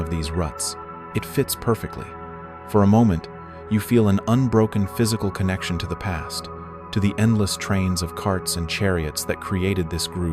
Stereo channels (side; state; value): both; identical; correlation 1.00